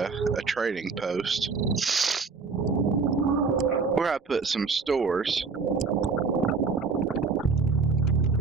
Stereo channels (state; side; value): quieter; left; 4.7 dB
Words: trading post where I put some stores.